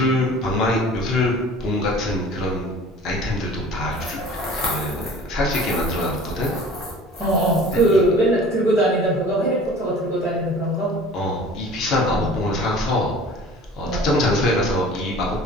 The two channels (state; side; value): normal; both; correlation 0.45